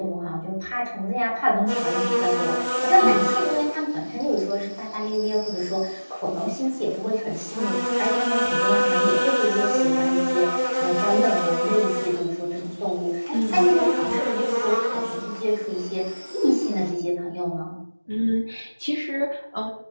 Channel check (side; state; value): both; inverted; correlation -1.00